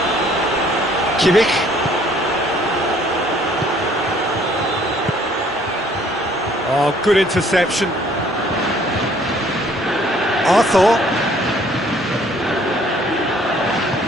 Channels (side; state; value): both; normal; correlation 0.59